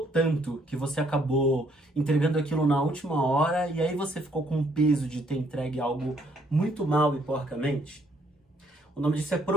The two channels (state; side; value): normal; both; correlation 0.68